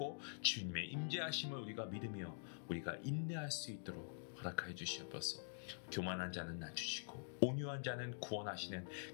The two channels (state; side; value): silent; right; digital silence